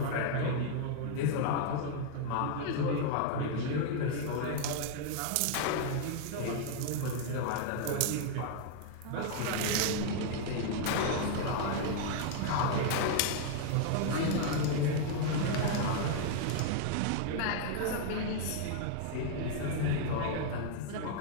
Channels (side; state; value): both; different; correlation 0.00